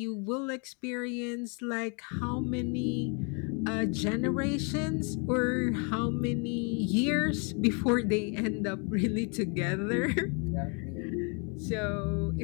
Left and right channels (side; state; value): right; quieter; 35.8 dB